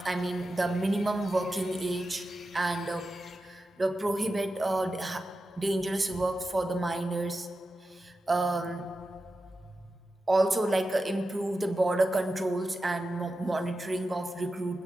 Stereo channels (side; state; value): both; normal; correlation 0.91